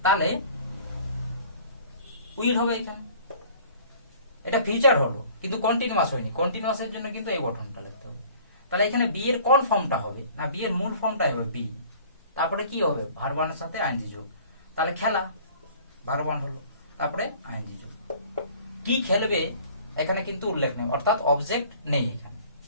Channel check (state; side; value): inverted; both; correlation -0.50